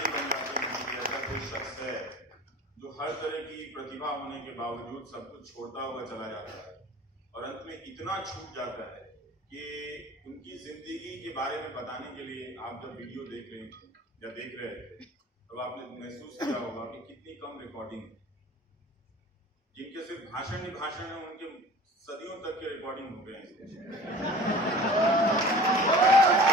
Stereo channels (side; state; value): both; normal; correlation 0.42